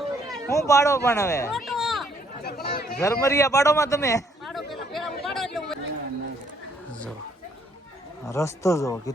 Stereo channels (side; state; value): both; normal; correlation 0.67